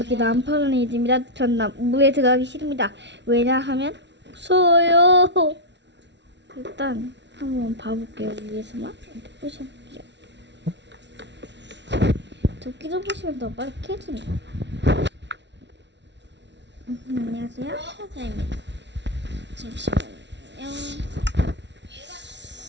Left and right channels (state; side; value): late; left; 0.51 ms